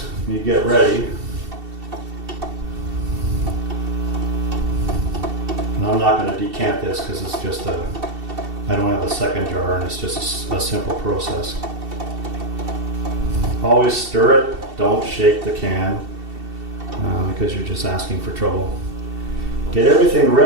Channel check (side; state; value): left; late; 2.7 ms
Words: you get ready, and I'm not going to decant this because it's just I don't have a second jar and it's just a simple process. Always stir it, don't shake the can because you're just asking for trouble. Get everything